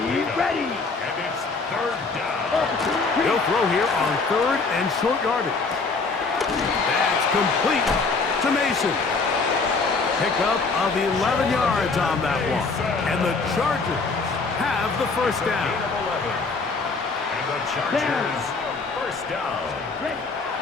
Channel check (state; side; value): quieter; right; 4.1 dB